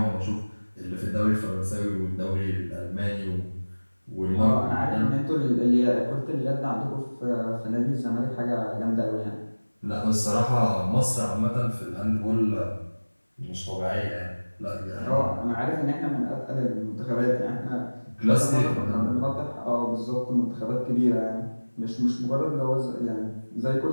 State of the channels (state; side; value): inverted; both; correlation -1.00